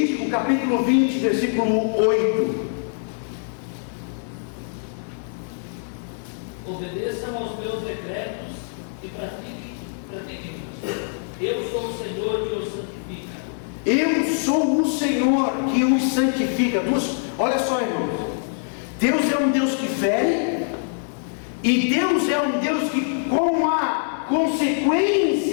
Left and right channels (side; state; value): right; silent; digital silence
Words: capítulo 20, versículo 8. Obedeçam aos meus decretos e pratiquem-os. Eu sou o Senhor que os santifica. Eu sou o Senhor que os santifica. Olha só, irmãos. Deus é um Deus que fere, e Deus é um Deus que, com a